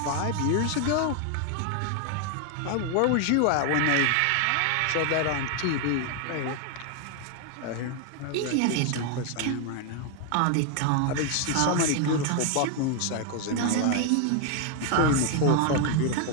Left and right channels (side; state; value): both; different; correlation 0.00